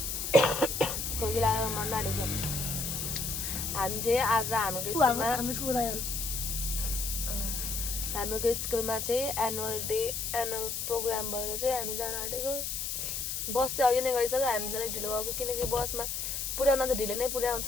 खोकी लागेर मन नाडेको छ। हामी चाहिँ आज हाम्रो स्कुलमा चाहिँ एनुअल प्रोग्राम भएर चाहिँ हामी जान आँटेको। बस चाहिँ अघि नै गइसक्यो, हामी चाहिँ ढिलो गएको किनकि बसमा पुर्याउन चाहिँ ढिलो नै पुर्याउँछ,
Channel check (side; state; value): left; noise; hiss, 3 dB below the sound